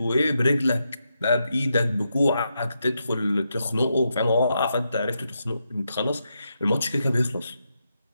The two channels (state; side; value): inverted; both; correlation -0.84